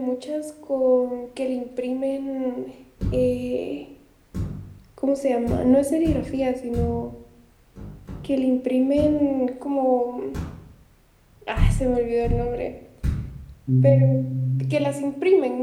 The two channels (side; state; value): both; identical; correlation 1.00